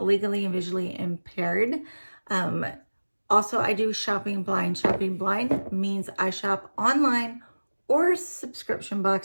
and visually impaired. Also, I do shopping blind. Shopping blind means I shop online or subscription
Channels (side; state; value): both; inverted; correlation -1.00